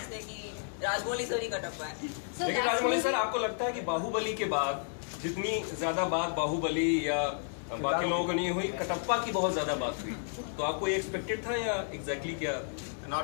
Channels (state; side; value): silent; right; digital silence